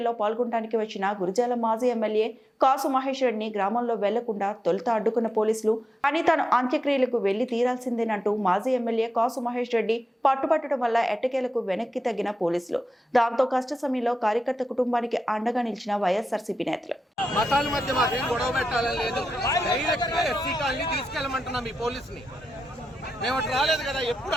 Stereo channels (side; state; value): both; normal; correlation 0.90